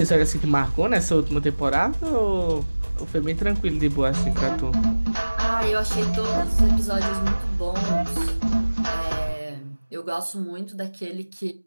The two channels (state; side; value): inverted; both; correlation -1.00